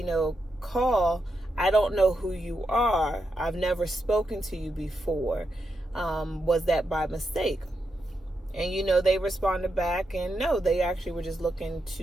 call. I don't know who you are. I've never spoken to you before. Was that by mistake? And, they responded back, and no, they actually were just looking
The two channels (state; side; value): normal; both; correlation 0.85